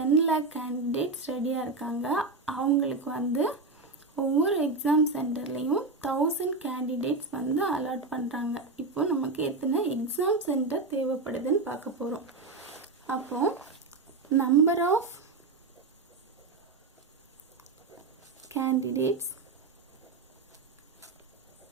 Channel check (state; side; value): quieter; left; 3.8 dB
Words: lakh கேண்டிடேட்ஸ் ரெடியாக இருக்காங்க. அவங்களுக்கு வந்து ஒவ்வொரு எக்ஸாம் சென்டர்லேயும் 1000 கேண்டிடேட்ஸ் வந்து அலாட் பண்ணுறாங்க. இப்போ நமக்கு எத்தனை எக்ஸாம் சென்டர் தேவைப்படுதுன்னு பார்க்க போகிறோம். அப்போது number of candidates